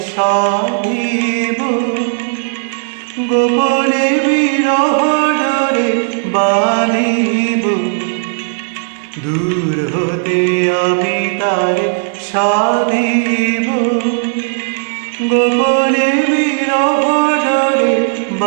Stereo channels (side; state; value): left; silent; digital silence